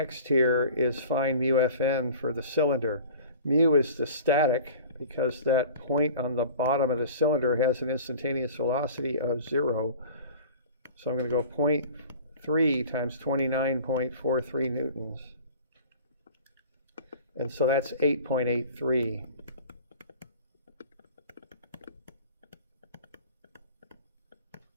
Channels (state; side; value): inverted; both; correlation -0.43